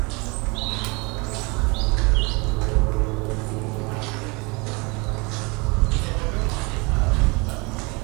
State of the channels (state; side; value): quieter; left; 28.4 dB